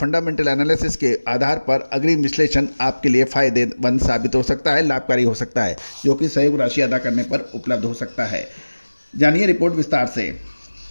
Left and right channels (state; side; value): inverted; both; correlation -1.00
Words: एनालिसिस के आधार पर अग्रिम विश्लेषण आपके लिए फायदेमंद साबित हो सकता है, लाभकारी हो सकता है, जो कि सहयोग राशि अदा करने पर उपलब्ध हो सकता है। जानिए रिपोर्ट विस्तार से।